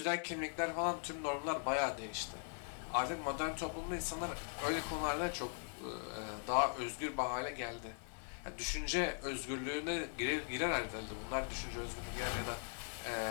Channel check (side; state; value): right; silent; 51 dB below the other